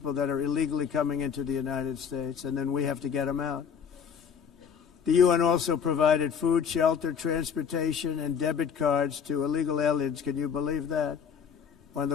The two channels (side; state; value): right; quieter; 7.1 dB